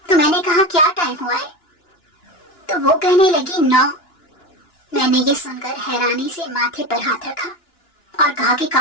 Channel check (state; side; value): late; right; 2.9 ms